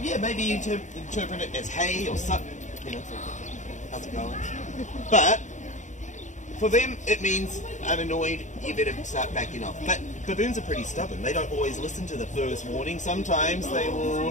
yeah, maybe you interpret it as hey or sup, you know, how's it going? But for them, it means I'm annoyed, you better start backing off. But baboons are pretty stubborn. They don't always listen to the first warning. Sometimes they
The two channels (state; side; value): late; right; 0.35 ms